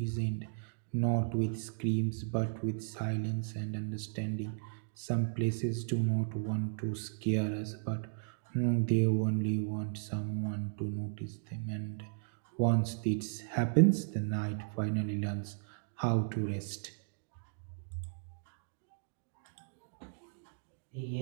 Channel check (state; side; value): silent; left; digital silence